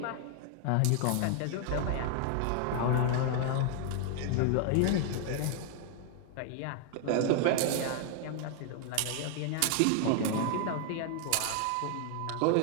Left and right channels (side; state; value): both; different; correlation 0.00